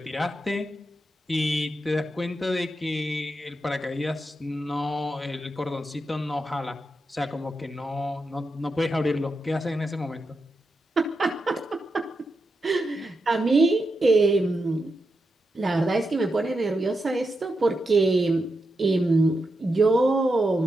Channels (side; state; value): both; normal; correlation 0.87